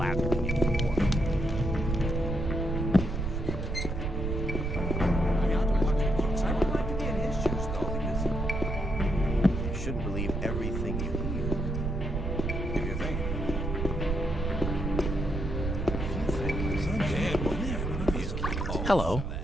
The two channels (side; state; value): right; noise; rumble, 2 dB below the sound